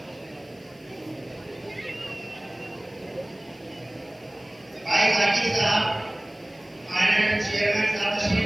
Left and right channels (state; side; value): noise; left; hiss, 30 dB below the sound